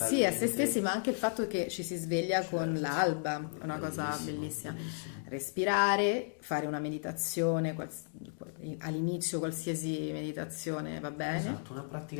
Sì, a se stessi, ma anche il fatto che ci si sveglia con l'alba, una cosa bellissima. Respirare, fare una meditazione, all'inizio qualsiasi meditazione va bene. Esatto, una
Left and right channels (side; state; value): right; silent; digital silence